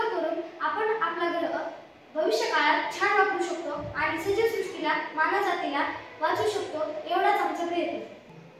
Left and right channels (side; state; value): both; identical; correlation 1.00